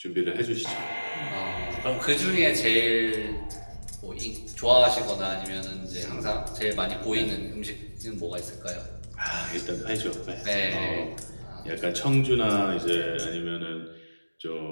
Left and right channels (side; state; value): both; inverted; correlation -1.00